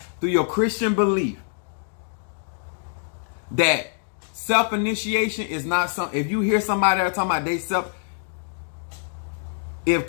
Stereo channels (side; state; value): right; silent; digital silence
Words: through your Christian belief, that self-initiation is not something. If you hear somebody that are talking about they self, if